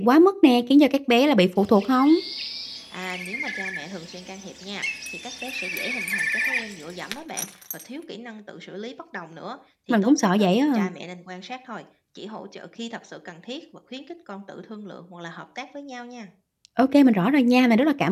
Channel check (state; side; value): identical; both; correlation 1.00